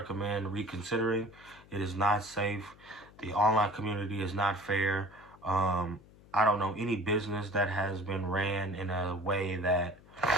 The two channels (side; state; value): left; noise; hum, 24 dB below the sound